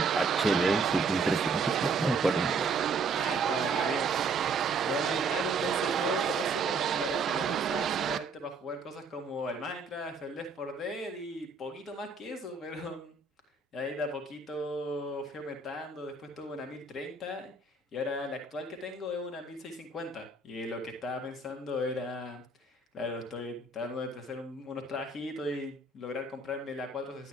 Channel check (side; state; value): left; quieter; 3.9 dB